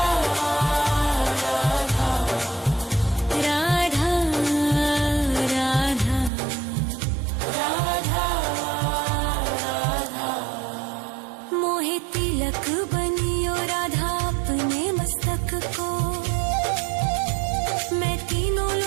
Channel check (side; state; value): left; drops out; at 6.3 s